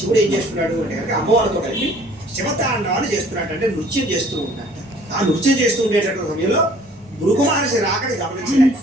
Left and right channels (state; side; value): normal; both; correlation 0.54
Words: ఏం చేస్తున్నాడు అంటే కనుక అమ్మవారితో కలిపి శివతాండవాన్ని చేస్తున్నాడు, అంటే నృత్యం చేస్తూ ఉంటాడు. ఆ నృత్యం చేస్తూ ఉండేటటువంటి సమయంలో భృగు మహర్షి రాకని